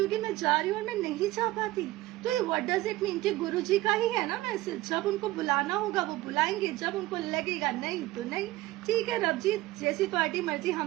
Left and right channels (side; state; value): left; quieter; 17.7 dB